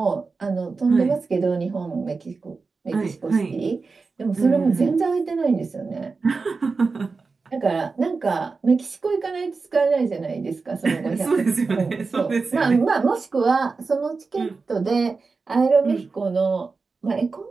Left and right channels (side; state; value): left; quieter; 4.4 dB